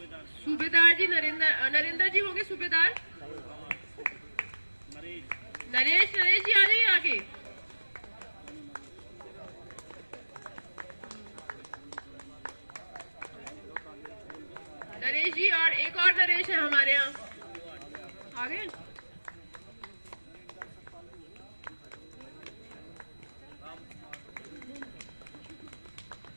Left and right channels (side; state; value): both; inverted; correlation -1.00